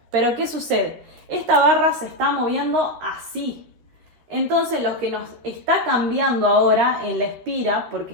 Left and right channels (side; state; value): left; late; 13 ms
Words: Pero ¿qué sucede? Esta barra se está moviendo así. Entonces lo que nos está cambiando ahora en la espira, porque